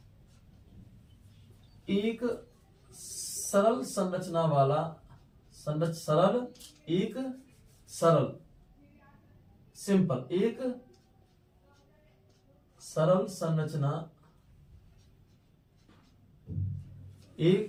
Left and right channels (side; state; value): both; identical; correlation 1.00